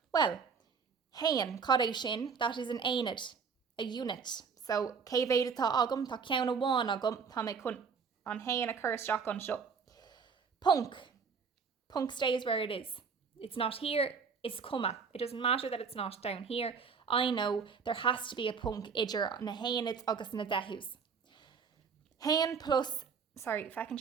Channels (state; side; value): quieter; left; 5.8 dB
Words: Well, hain, cad sin, that is an aonid, a unit. So, cévéad atá agam, tá ceann amháin agam, tá mé chun an hain occurs Jack an seo. Punk. Punk stays where it is. It's not here, it's comma. It doesn't matter that it's not down here. I know there has to be a punk idir na hainid agus na dehús. Hain plus, sorry, if I can